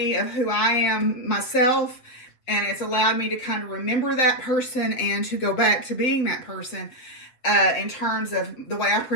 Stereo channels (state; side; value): late; right; 7.8 ms